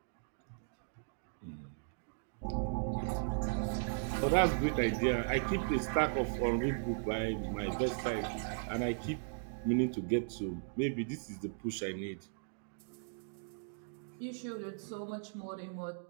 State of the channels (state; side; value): silent; left; digital silence